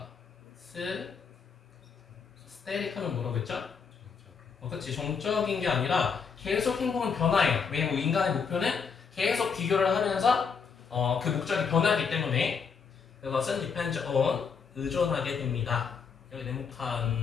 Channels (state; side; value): quieter; right; 5.9 dB